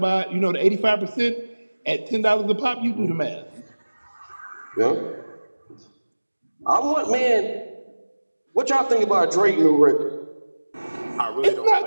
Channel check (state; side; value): inverted; both; correlation -1.00